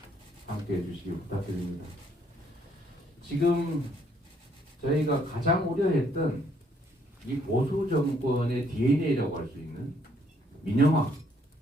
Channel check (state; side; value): normal; both; correlation 0.68